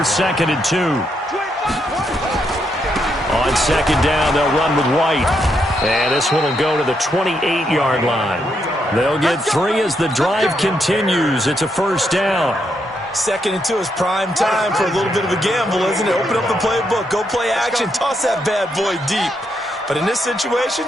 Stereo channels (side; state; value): both; normal; correlation 0.79